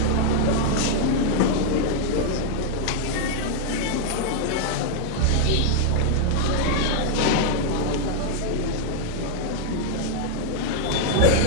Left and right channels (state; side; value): different; both; correlation 0.00